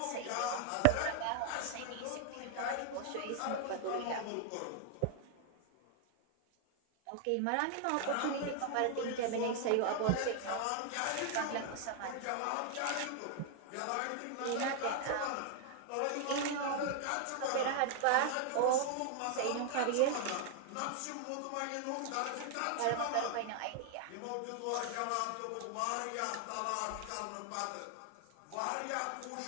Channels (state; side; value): different; both; correlation 0.00